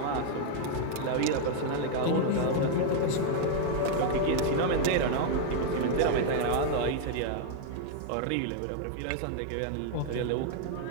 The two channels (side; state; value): both; different; correlation 0.00